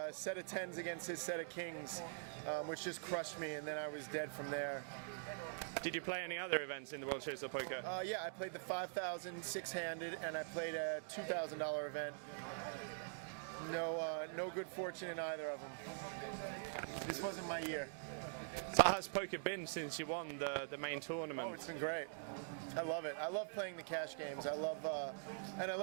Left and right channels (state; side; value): silent; left; digital silence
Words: set of 10s against his set of kings, which just crushed me, and then I was dead from there. Did you play any other events in the World Series of Poker? Yeah, I played the 5,000 6-handed, and I played a $2,000 event. No good fortune in either of them. This wasn't my year. So how's poker been since you won the main tournament? Oh, it's been great. I love it. I love playing the cash games. I love